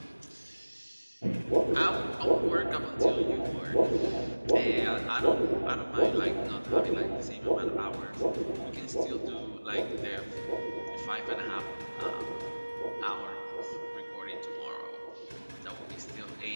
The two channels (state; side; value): inverted; both; correlation -1.00